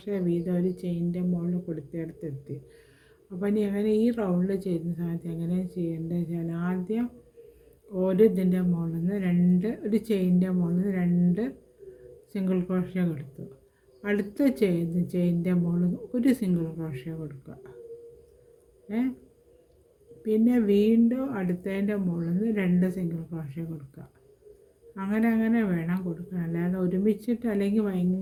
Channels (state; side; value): identical; both; correlation 1.00